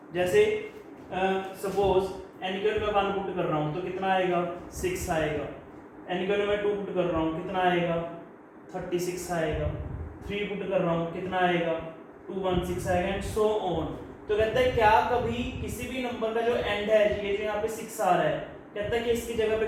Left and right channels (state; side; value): identical; both; correlation 1.00